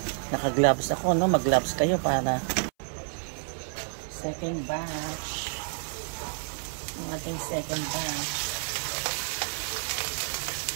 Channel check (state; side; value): silent; left; 58 dB below the other